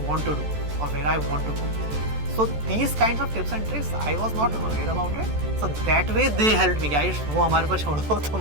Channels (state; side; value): late; left; 14 ms